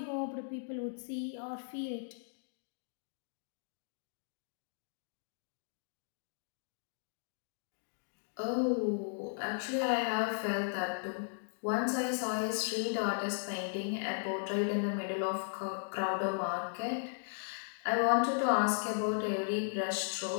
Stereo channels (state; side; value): silent; right; digital silence